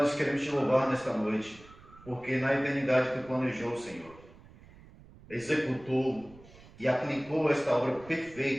queremos te louvar nesta noite, porque na eternidade tu planejou, Senhor, executou e aplicou esta obra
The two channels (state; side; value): noise; right; rumble, 22 dB below the sound